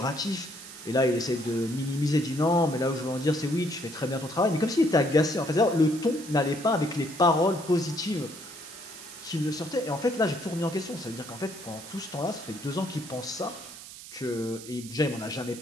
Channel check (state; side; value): noise; right; hiss, 14 dB below the sound